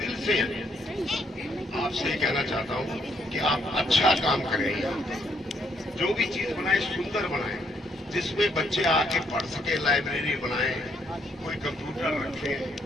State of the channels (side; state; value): both; normal; correlation 0.72